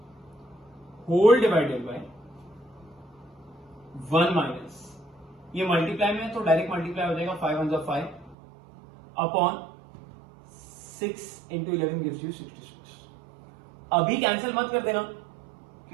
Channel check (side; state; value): left; drops out; at 8.3 s